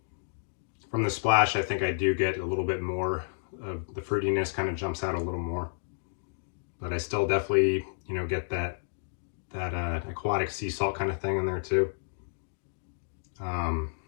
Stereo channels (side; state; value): right; silent; digital silence